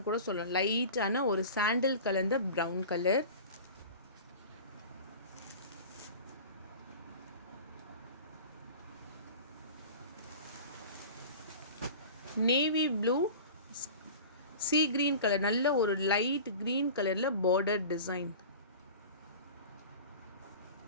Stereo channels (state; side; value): inverted; both; correlation -0.37